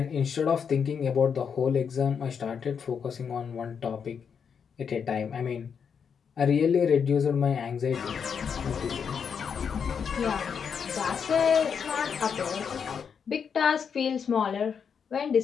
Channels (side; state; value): right; quieter; 6.8 dB